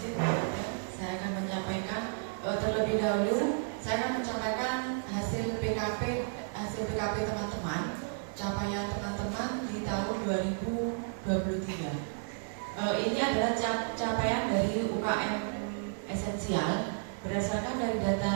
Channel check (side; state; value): left; silent; 56 dB below the other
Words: saya akan menyampaikan terlebih dahulu. Saya akan menyampaikan hasil PKP teman-teman, capaian teman-teman di tahun 2023. Ini adalah capaian dari UKM esensial. Berdasarkan dari